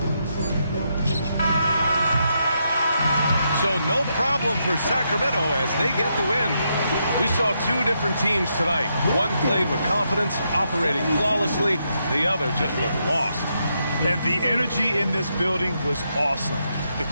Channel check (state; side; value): inverted; both; correlation -0.80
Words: So no problem for Sacramento as they get the win. We saw two different teams tonight. One played with confidence, operating flawlessly. The other just looked lost. And the energy in this building was awesome. The